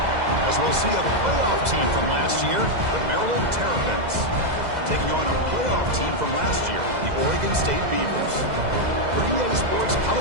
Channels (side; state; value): left; late; 2.0 ms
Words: As we'll see a playoff team from last year, the Maryland Terrapins, taking on a playoff team from last year, the Oregon State Beavers. For EA Sports